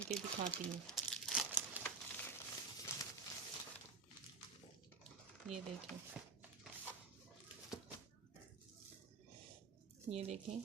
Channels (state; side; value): quieter; left; 4.6 dB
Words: के दिखाती हूँ। ये देखें, ये देखें,